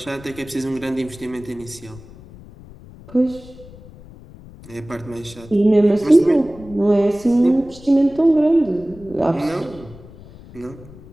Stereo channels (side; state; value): left; noise; rumble, 19 dB below the sound